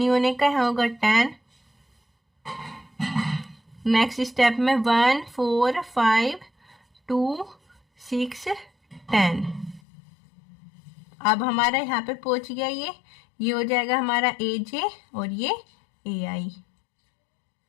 होने का, यहाँ होगा 10। नेक्स्ट स्टेप में 1 4 5 2 6 10। अब हमारा यहाँ पे पहुंच गया, ये हो जाएगा हमारा ए जे और ये ए आई।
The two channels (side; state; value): right; drops out; at 9.8 s